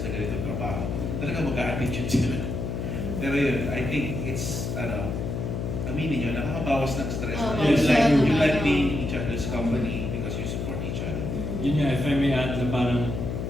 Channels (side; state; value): left; noise; hum, 3 dB below the sound